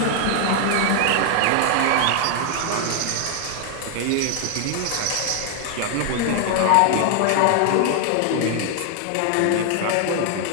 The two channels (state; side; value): different; both; correlation 0.00